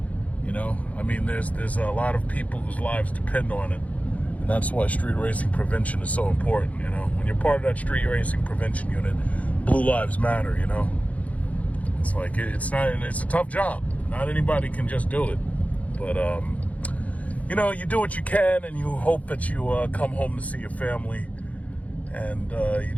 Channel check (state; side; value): late; right; 0.069 ms